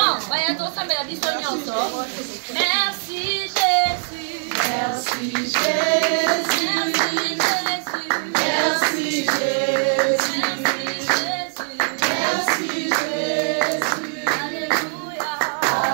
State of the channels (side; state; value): left; silent; 63 dB below the other